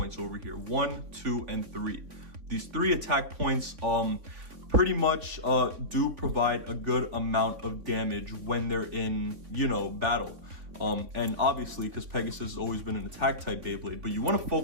over here, 1, 2, and 3. These 3 attack points pretty much do provide a good amount of damage when they're in, battle. And obviously, because Pegasus has always been an attack type Beyblade, but you want to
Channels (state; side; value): late; left; 3.7 ms